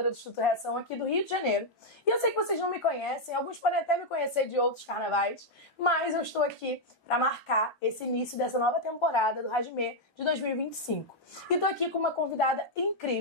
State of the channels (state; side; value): normal; both; correlation -0.01